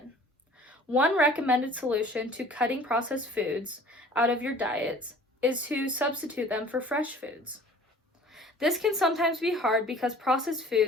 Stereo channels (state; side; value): normal; both; correlation 0.49